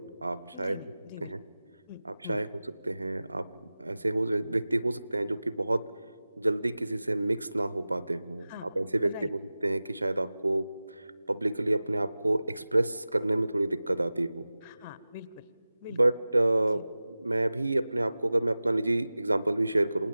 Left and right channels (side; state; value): both; inverted; correlation -0.96